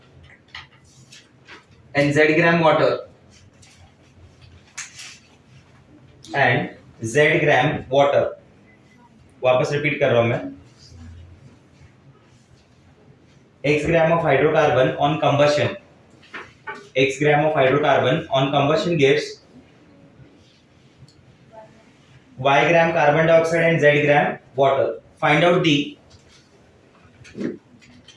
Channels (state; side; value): identical; both; correlation 1.00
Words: and z gram water and z gram water। वापस रिपीट कर रहा हूं मैं। x gram of hydrocarbon on combustion gives Y gram carbon dioxide and Z gram water. Find out